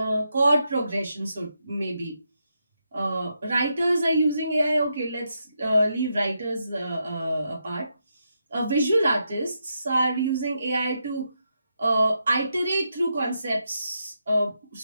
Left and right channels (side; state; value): both; inverted; correlation -0.83